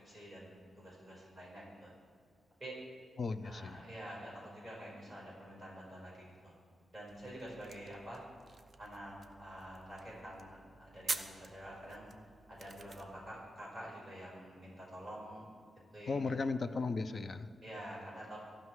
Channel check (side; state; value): both; normal; correlation 0.87